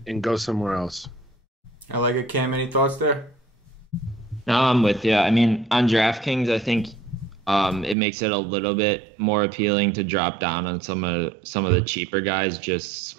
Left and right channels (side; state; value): left; drops out; at 8.0 s